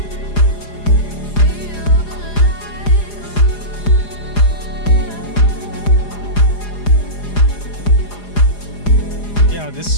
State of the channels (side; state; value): right; late; 4.9 ms